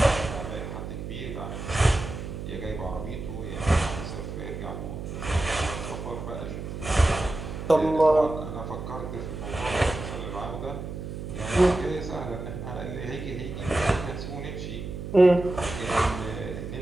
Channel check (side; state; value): right; noise; hum, 7 dB below the sound